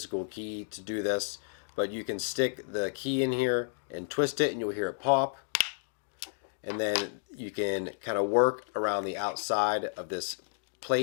key to do this, but you can stick the key in here and twist it and you'll hear it pop. And then you can kind of work around the outside of this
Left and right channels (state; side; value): silent; right; digital silence